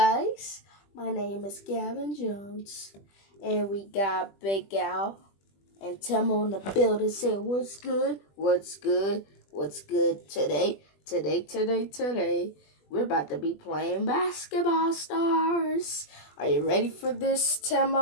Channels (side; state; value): right; late; 20 ms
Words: my name is Gavin Jones, and we got Big Al and Temo in the building saying, "What's good? What's good? What's good today? Today. We're about to be playing basketball stars. Are you ready for this,